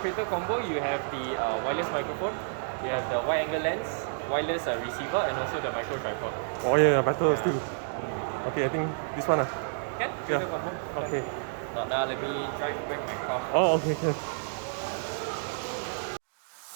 combo, you have the wireless microphone, you have the wide angle lens, wireless receiver, and also the micro tripod. Oh yeah, better still. Okay, I think this one. Can? Yeah. Creator combo. Okay. Let me try to open my car. Oh, okay, okay.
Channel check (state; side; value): silent; left; digital silence